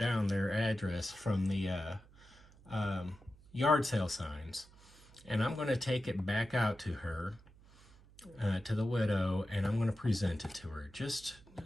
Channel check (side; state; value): right; noise; hum, 24 dB below the sound